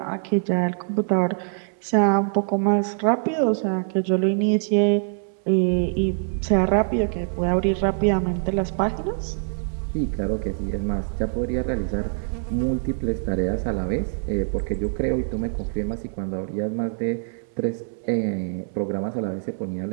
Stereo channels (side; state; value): left; silent; 62 dB below the other